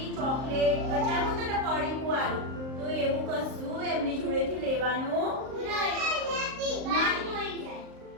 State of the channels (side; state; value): left; late; 38 ms